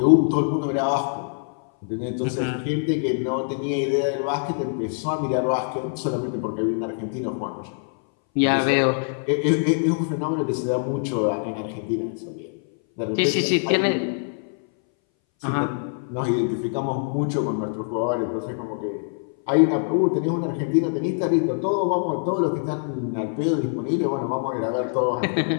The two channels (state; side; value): silent; right; 60 dB below the other